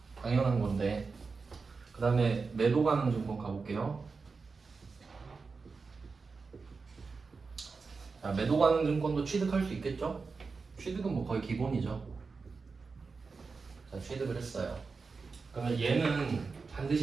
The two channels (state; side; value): quieter; left; 4.6 dB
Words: 당연한 건데. 그 다음에 매도 가능 증권 가볼게요. 자, 매도 가능 증권도 취득할 수 있겠죠? 취득은 뭐 거의 기본이죠. 자, 취득을 했어요. 그러면 얘는